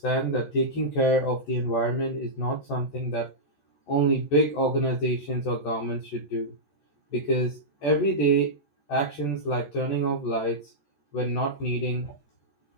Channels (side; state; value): right; late; 14 ms